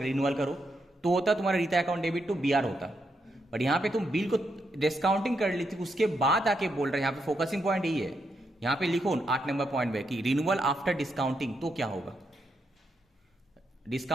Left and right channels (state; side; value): normal; both; correlation 0.80